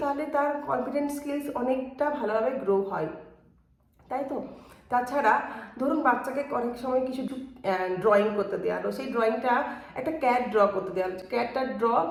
তাহলে তার কনফিডেন্স স্কিলস অনেকটা ভালোভাবে গ্রো হয়, তাই তো? তাছাড়া ধরুন বাচ্চাকে অনেক সময় কিছু ড্রয়িং করতে দেওয়া হলো, সেই ড্রয়িংটা একটা ক্যাট ড্র করতে দেওয়া হলো, ক্যাটটার ড্র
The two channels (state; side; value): identical; both; correlation 1.00